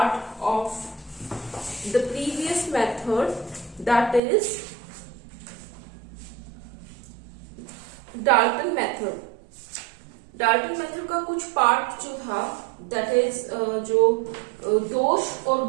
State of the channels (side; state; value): left; drops out; at 4.2 s